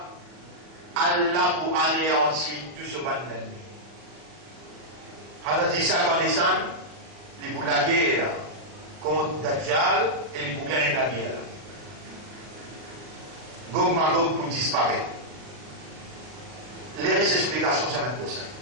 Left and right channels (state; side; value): late; left; 40 ms